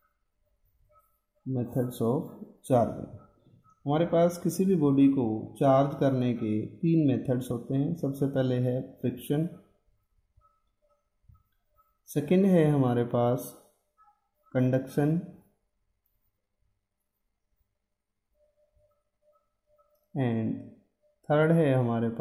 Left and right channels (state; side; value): identical; both; correlation 1.00